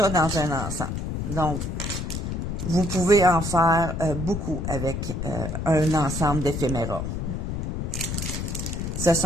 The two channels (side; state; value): left; noise; rumble, 3 dB below the sound